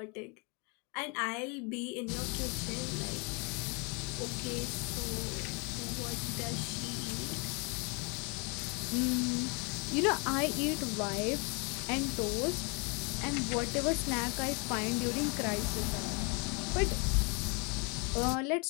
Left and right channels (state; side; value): quieter; right; 32.6 dB